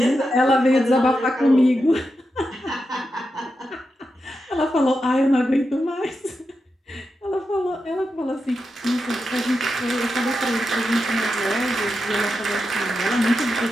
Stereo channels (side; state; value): both; normal; correlation 0.88